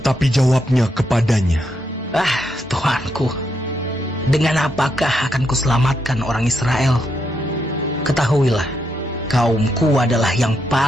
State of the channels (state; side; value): normal; both; correlation 0.80